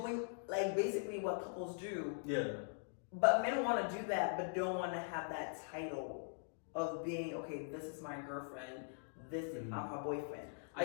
like basically what couples do. Yeah. But men want to do that, but don't want to have that title of being okay. This is my girlfriend. This is my boyfriend.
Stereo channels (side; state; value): right; silent; digital silence